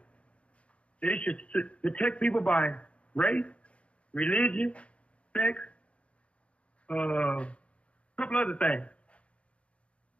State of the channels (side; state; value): right; late; 0.062 ms